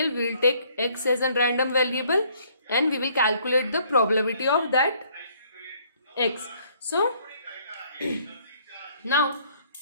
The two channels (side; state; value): both; inverted; correlation -0.63